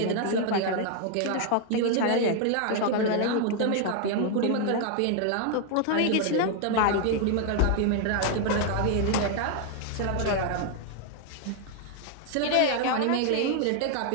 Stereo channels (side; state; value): both; different; correlation 0.00